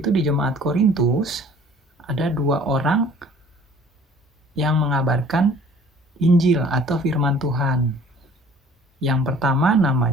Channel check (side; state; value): both; normal; correlation 0.51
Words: itu di jemaat Korintus ada 2 orang yang mengabarkan Injil atau firman Tuhan. Yang pertama